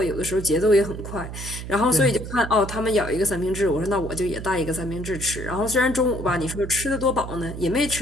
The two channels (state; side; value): noise; right; hum, 9 dB below the sound